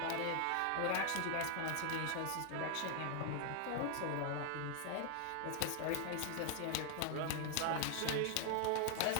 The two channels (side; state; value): both; different; correlation 0.00